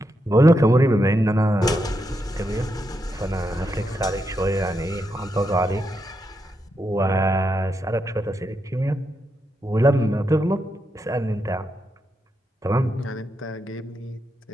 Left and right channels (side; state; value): both; normal; correlation 0.83